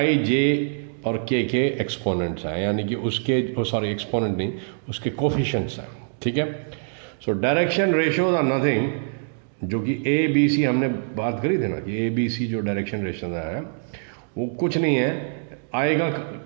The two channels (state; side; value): silent; left; digital silence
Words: जे और के एक्सपोनेंट्स हैं, यानी कि उसके, सॉरी एक्सपोनेंट नहीं, उसके कोफिशिएंट्स हैं, ठीक है। So direction ratios are nothing, जो कि ए बी सी हमने बात करी थी ना, कि ए बी सी जो डायरेक्शन रेशियोज है वो कुछ नहीं है। आई का